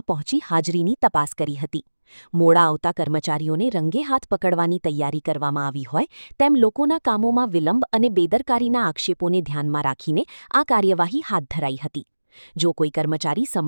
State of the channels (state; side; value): inverted; both; correlation -1.00